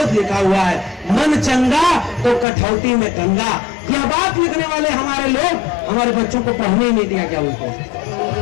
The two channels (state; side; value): drops out; right; at 2.5 s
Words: लिखा हुआ है। मन चंगा तो कठौती में गंगा, यह बात लिखने वाले हमारे लोग हमारे बच्चों को पढ़ने ही नहीं दिया क्या उनको?